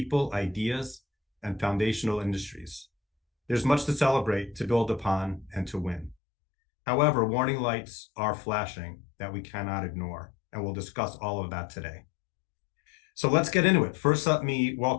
ideas, and foundational industries. There's much to celebrate, to build upon, and to win. However, warning lights are flashing that we cannot ignore, and we'll discuss all of that today. So let's get into it. First, let me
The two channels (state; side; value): drops out; right; at 6.2 s